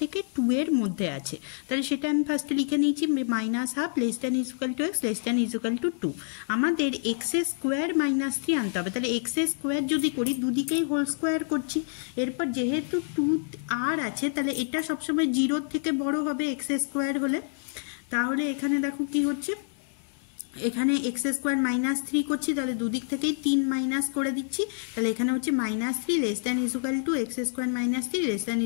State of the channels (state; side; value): silent; right; 60 dB below the other